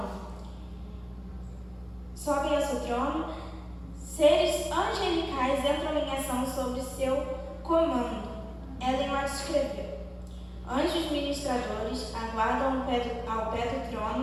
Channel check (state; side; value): identical; both; correlation 1.00